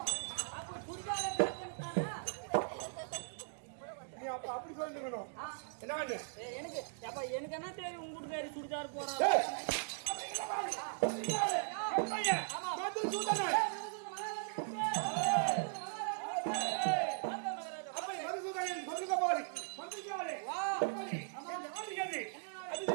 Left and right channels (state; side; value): silent; left; digital silence